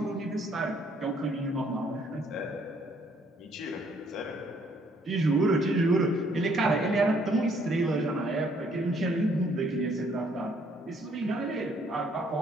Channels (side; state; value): both; normal; correlation 0.66